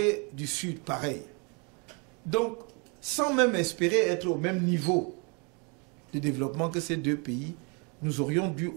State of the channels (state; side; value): quieter; left; 33.4 dB